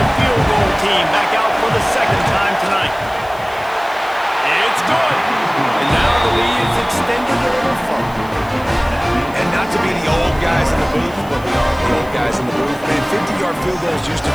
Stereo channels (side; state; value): left; noise; hiss, 23 dB below the sound